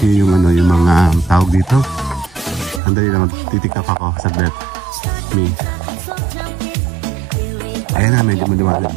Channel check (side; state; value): left; drops out; at 2.8 s